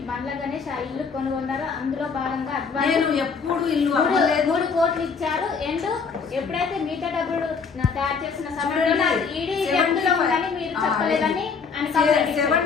బండ్ల గణేష్ ఆ ఇల్లు కొనుగొన్నారో అందులో భాగంగా నేను ఎప్పుడు ఇల్లు అమ్మలేదు. 3 కోట్లు ఇచ్చారు. అండ్ ఎప్పుడైతే మిగతా డబ్బులు తయారు చేసిన సమయంలో ఈడీ జప్తులో ఉందని మీరు చెప్పలేదని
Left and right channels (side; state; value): right; quieter; 5.4 dB